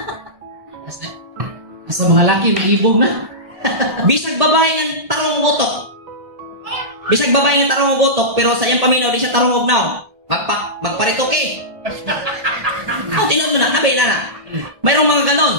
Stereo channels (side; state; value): left; late; 1.1 ms